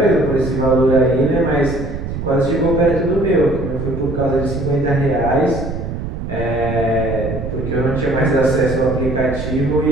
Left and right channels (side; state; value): right; noise; rumble, 6 dB below the sound